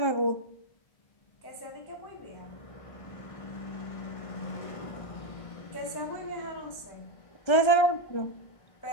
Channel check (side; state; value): right; late; 1.3 ms